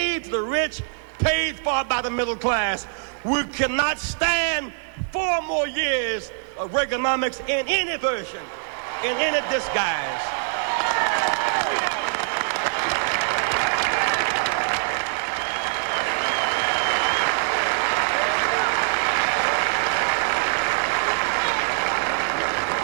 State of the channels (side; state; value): left; silent; digital silence